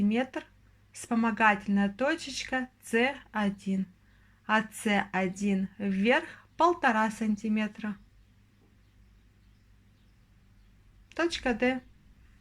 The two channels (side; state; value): both; identical; correlation 1.00